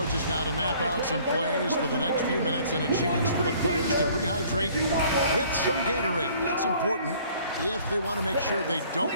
now to map out some plays for the next few minutes and a chance for the players to rehydrate with some Gatorade. That's important if they want to make sure they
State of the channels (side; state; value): both; inverted; correlation -0.56